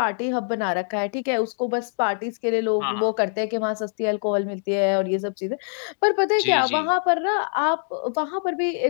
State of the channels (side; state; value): right; silent; digital silence